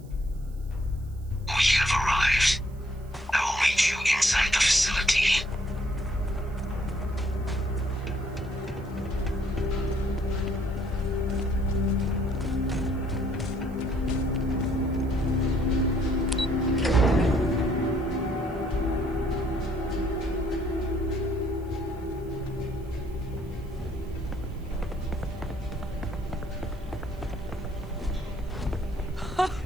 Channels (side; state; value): right; noise; hiss, 29 dB below the sound